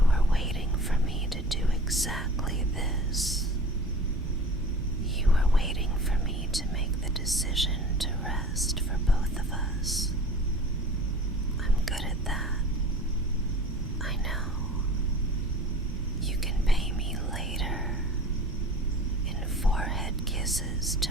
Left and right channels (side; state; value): both; normal; correlation 0.42